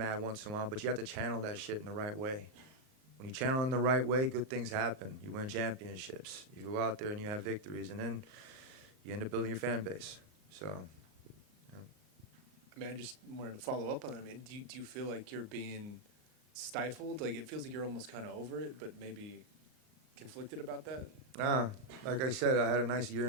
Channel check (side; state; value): left; late; 38 ms